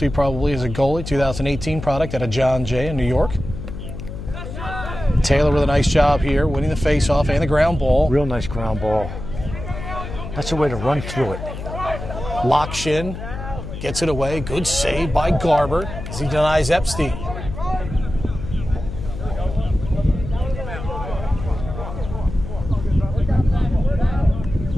probably as a goalie, 2018 product out of John Jay in New York. Taylor with a nice job here, winning the face-off and the ground ball. Real nice ground ball. That's a way to run through it. Lockshin gets it away. Good save by Garber as he denies Epstein.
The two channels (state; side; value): noise; left; hum, 9 dB below the sound